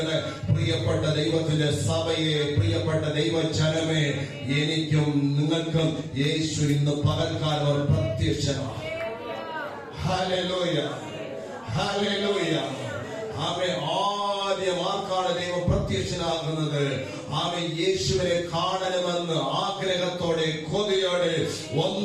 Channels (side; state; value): both; identical; correlation 1.00